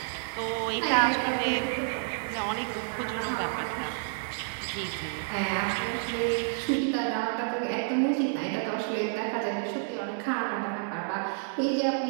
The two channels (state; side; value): silent; left; digital silence